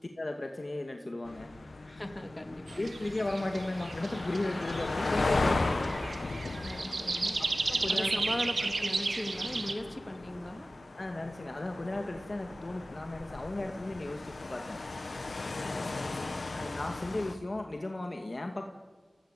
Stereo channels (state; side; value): normal; both; correlation 0.96